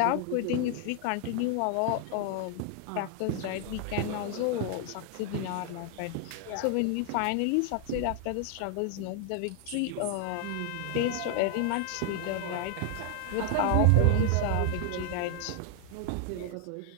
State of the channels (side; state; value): both; different; correlation 0.00